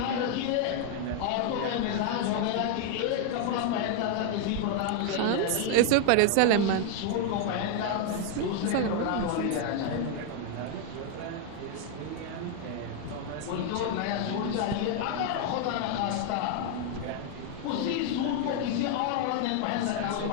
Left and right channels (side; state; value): both; different; correlation 0.00